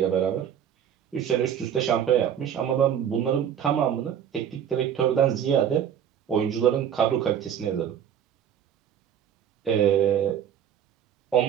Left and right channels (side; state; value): left; quieter; 9.1 dB